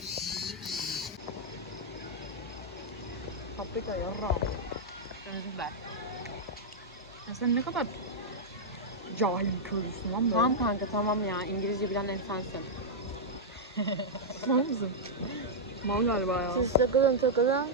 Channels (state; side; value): normal; both; correlation -0.07